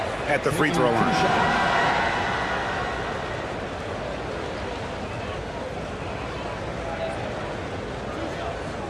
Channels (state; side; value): identical; both; correlation 1.00